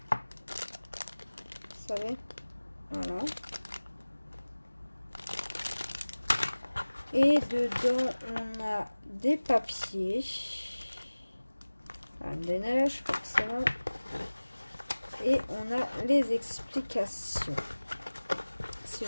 Vous savez, voilà. Et dedans, on a des papiers. Des neiges, forcément. Et on a les explications. Si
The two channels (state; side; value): inverted; both; correlation -1.00